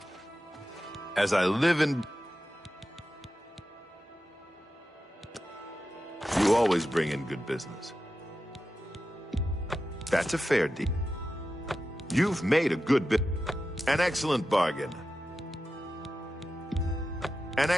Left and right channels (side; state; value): both; normal; correlation 0.91